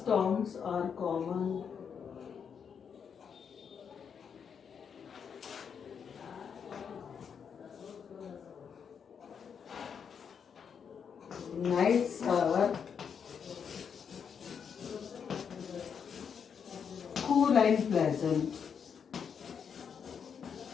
are common. Nights are cool and pleasant.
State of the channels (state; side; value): quieter; right; 7.0 dB